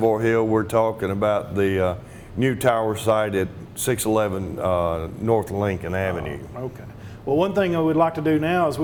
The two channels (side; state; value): both; identical; correlation 1.00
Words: Hill, we're talking about the new tower site at 611 North Lincoln Avenue. Okay. Well, one thing we'd like to do now is